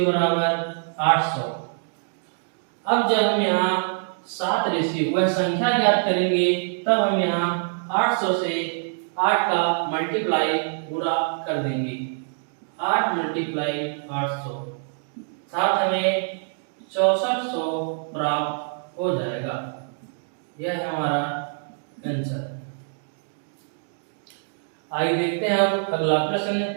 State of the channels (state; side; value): silent; left; digital silence